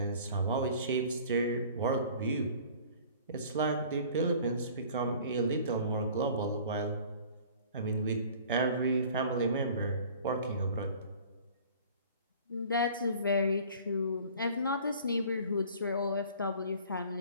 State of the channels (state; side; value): inverted; both; correlation -0.48